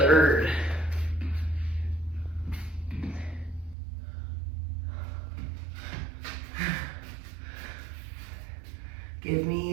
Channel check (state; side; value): drops out; left; at 3.8 s